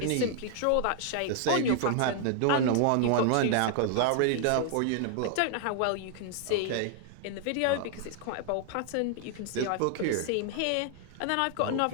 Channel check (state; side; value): different; both; correlation 0.00